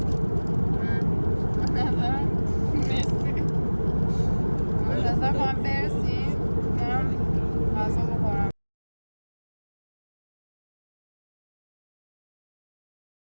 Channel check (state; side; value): inverted; both; correlation -1.00